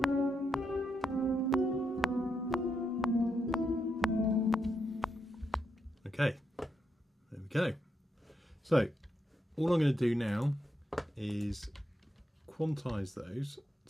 Okay, there we go. So all I'm going to do now is quantize those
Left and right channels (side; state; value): both; normal; correlation 0.82